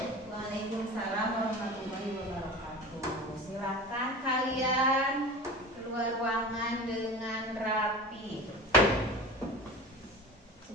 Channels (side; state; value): both; normal; correlation 0.34